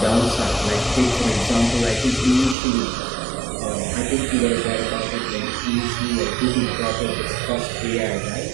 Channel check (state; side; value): drops out; left; at 2.6 s